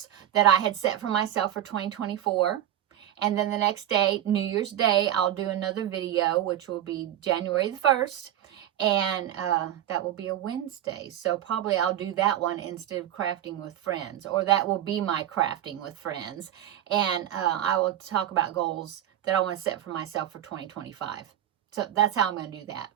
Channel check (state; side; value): quieter; left; 11.8 dB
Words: that I had set for myself for 2024. And then the next day, New Year's Day, I'll do another video, which will be January the 1st. And that will be a Wednesday. So probably I'll do that one instead of crafting with friends. Or that will be my crafting with friends. And I will talk about goals that I want to set for myself for 2025. So that's how I'm going to do that.